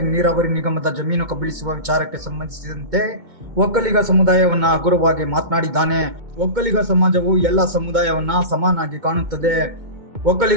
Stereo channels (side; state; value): left; late; 2.2 ms